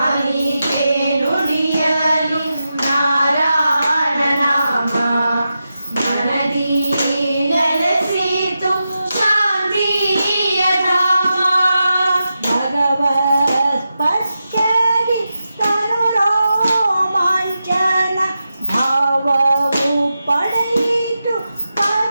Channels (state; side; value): inverted; both; correlation -0.90